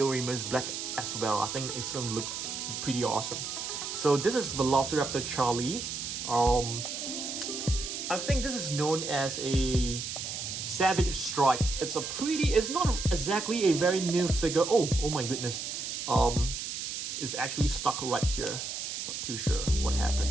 black as well. I think it's gonna look pretty awesome. So this is Velociraptor Charlie. I think this is known as a Savage Strike. It's not exactly a very new figure. Oh my goodness. It's actually stuck right here. Not too sure what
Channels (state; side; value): noise; right; hiss, 5 dB below the sound